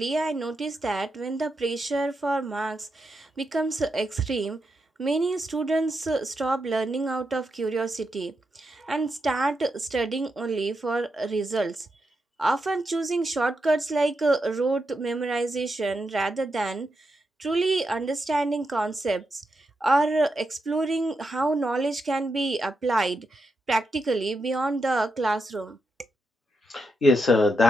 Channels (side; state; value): both; normal; correlation 0.85